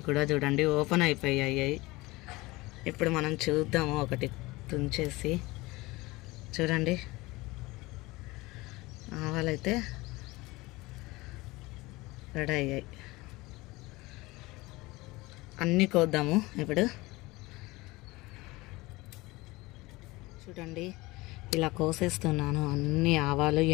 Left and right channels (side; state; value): right; quieter; 21.5 dB